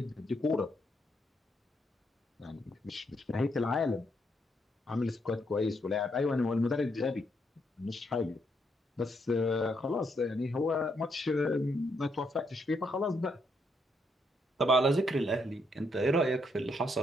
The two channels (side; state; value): both; normal; correlation 0.76